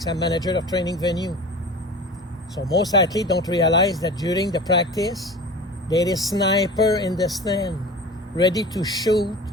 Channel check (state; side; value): normal; both; correlation 0.36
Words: I'm manager of training venue. So most athletes don't realize that during the practice, there is sniper in the stand, ready to shoot